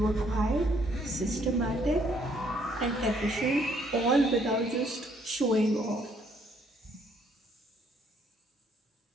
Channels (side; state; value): both; normal; correlation 0.67